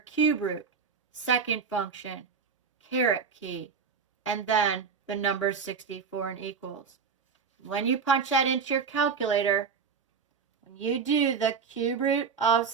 root, second function, caret key, and then the number 64 and equals. When you punch that into your calculator, when you do the cube root of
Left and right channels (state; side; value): quieter; left; 5.8 dB